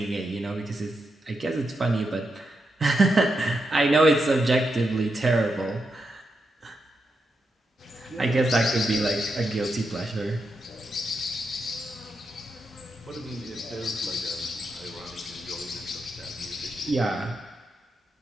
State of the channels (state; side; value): normal; both; correlation 0.85